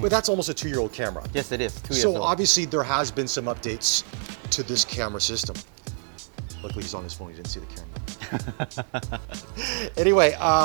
that's almost a 2-year-old camera. Yes, it is. 2 years So old. obviously there has been some updates to this camera system. Luckily he's on his phone, he didn't see the camera. Anyway,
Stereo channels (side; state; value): left; silent; 56 dB below the other